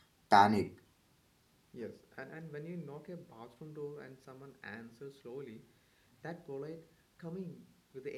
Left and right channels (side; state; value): both; identical; correlation 1.00